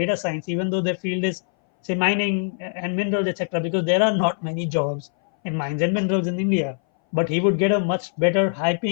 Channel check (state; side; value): silent; right; 61 dB below the other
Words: science, even though their field is, say, mining and minerals, etc., because there are not many jobs in mines and minerals in India. But he would get a much better, high